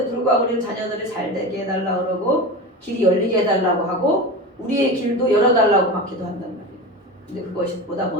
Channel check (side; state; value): both; normal; correlation 0.27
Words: 불구하고 우리는 자녀들을 잘 되게 해달라고 그러고 길이 열리게 해달라고 하고 우리의 길도 열어달라고 막 기도한단 말이에요. 근데 그것보다